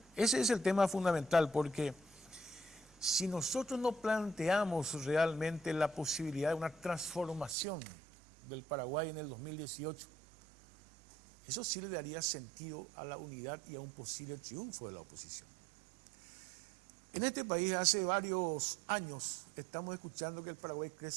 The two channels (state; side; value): drops out; left; at 7.6 s